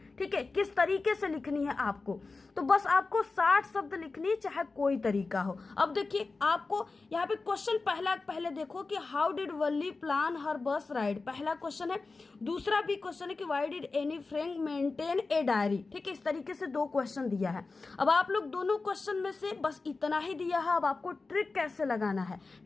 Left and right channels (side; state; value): right; quieter; 3.9 dB